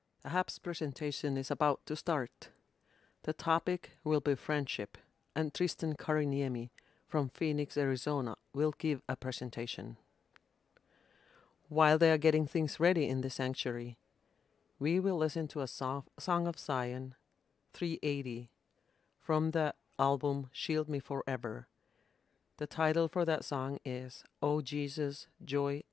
Ahab's presentation is about to start. The topic will be friendship, and Tristan Kariniemi from Phoenix, Arizona will give a presentation. While they are getting things ready in the sanctuary, we will listen to a Song of Zion 380 from the album Shield Me Forever. The title for that song is "O Jesus, Joy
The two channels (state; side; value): quieter; right; 6.7 dB